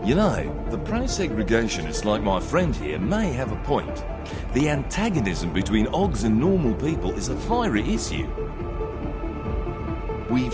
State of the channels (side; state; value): both; identical; correlation 1.00